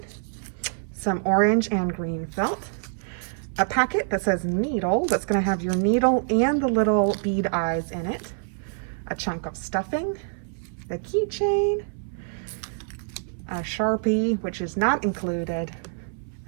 some orange and green felt, a packet that says needle that's going to have your needle and the little bead eyes in it, a chunk of stuffing, the keychain, a Sharpie, which is not included,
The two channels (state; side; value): silent; left; 61 dB below the other